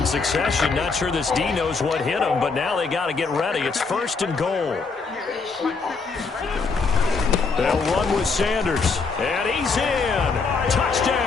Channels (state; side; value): quieter; right; 4.6 dB